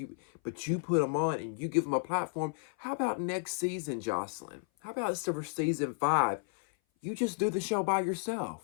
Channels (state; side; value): silent; right; 56 dB below the other